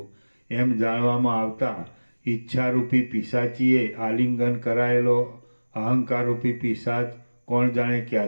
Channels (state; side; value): inverted; both; correlation -1.00